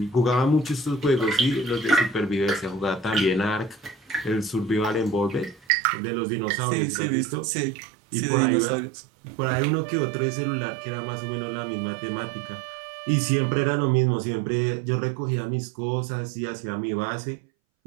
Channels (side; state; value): left; drops out; at 5.7 s